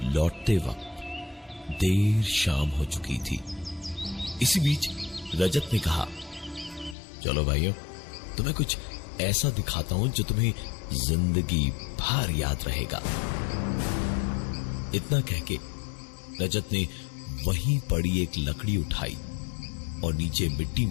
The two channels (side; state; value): right; drops out; at 7.0 s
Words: लौटते वक्त देर शाम हो चुकी थी। इसी बीच रजत ने कहा, चलो भाइयों, तुम्हें कुछ ऐसा दिखाता हूं जो तुम्हें जिंदगी भर याद रहेगा। इतना कहके रजत ने वहीं पड़ी एक लकड़ी उठाई और नीचे मिट्टी